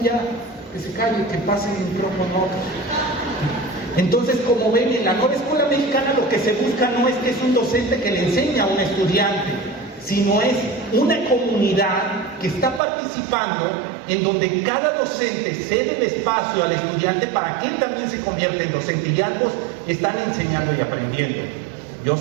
ya, que se calle, que pase el micrófono. Entonces, como ven, en la nueva escuela mexicana lo que se busca no es que es un docente que le enseña a un estudiante, sino es una comunidad que está participando, en donde cada docente cede el espacio al estudiante para que él también se convierta en docente, y ambos están enseñando y aprendiendo. Yo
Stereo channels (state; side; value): drops out; left; at 12.8 s